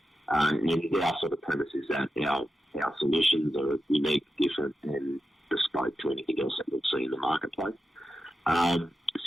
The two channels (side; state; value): both; normal; correlation 0.90